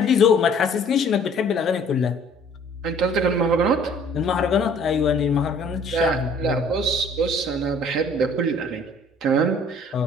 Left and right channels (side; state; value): both; normal; correlation 0.55